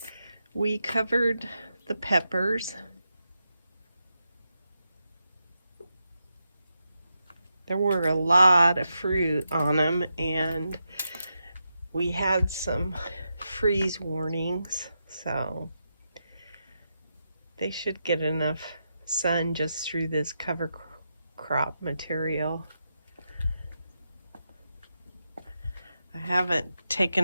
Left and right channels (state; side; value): inverted; both; correlation -0.86